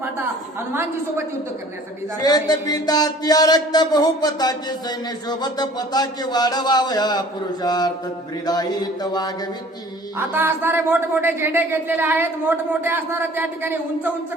फाटा हनुमानजी सोबत युद्ध करण्यासाठी जात आहे. शेत पिता त्या रक्त बहुपताचे सैन्य शोभत पताके वाढवावया पुरुषार्थ ब्रिदाईत वागविती. आता असणारे मोठमोठे झेंडे घेतलेले आहेत, मोठमोठे असणारे त्या ठिकाणी उंच उंच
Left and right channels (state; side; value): normal; both; correlation 0.49